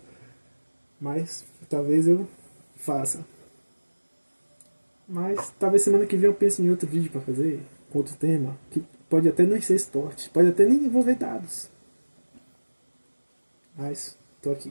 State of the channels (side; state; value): both; inverted; correlation -1.00